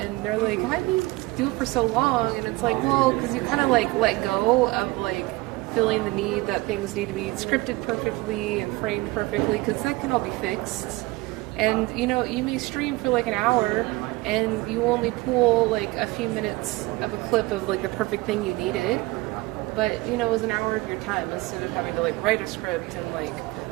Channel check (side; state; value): left; quieter; 21.4 dB